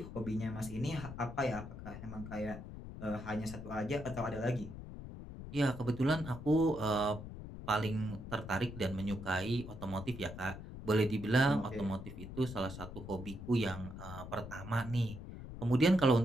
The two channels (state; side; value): noise; left; rumble, 10 dB below the sound